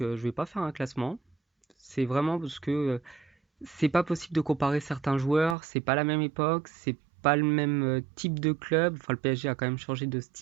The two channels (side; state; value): left; drops out; at 5.6 s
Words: vais pas faire un classement. C'est vraiment parce que c'est pas possible de comparer certains joueurs, c'est pas la même époque, c'est pas le même type de club. Enfin, le PSG a quand même changé de